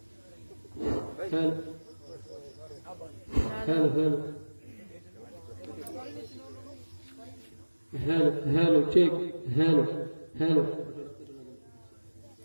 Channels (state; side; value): inverted; both; correlation -1.00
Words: हेलो चेक, हेलो हेलो